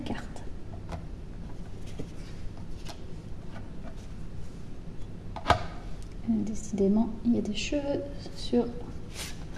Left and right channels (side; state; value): both; identical; correlation 1.00